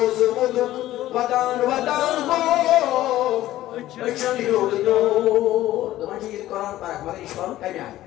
مدک ودان ہو اچھن یود دور دمان جی قرآن پران مگر اشوان کمی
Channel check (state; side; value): quieter; right; 14.6 dB